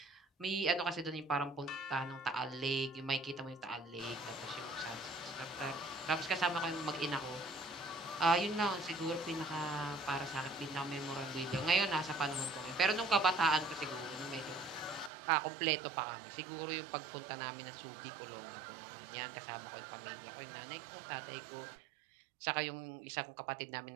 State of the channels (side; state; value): left; drops out; at 15.1 s